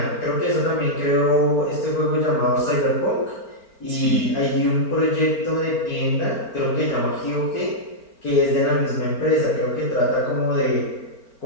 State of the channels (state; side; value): late; right; 4.4 ms